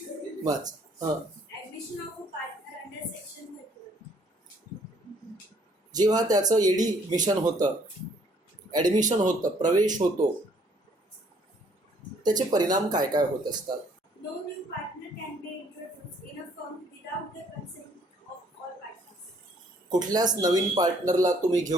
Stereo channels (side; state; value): both; normal; correlation 0.63